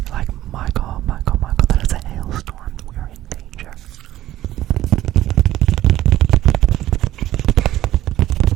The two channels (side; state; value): left; quieter; 14.0 dB